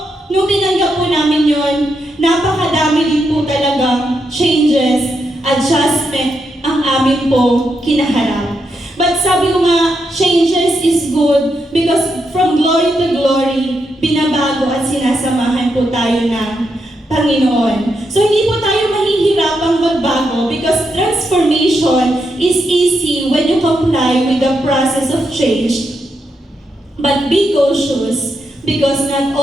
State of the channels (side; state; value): both; normal; correlation 0.82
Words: nung tinanggap po namin yun, napakadami din po talagang changes, adjustment ang amin po kinaharap. But sabi ko nga, changes is good because from glory to glory, binabago at sinasamahan po tayo ng Panginoon. So hindi po tayo mahihirapang magbago because transformation is easy when you comply with the process of change. But be cautious because not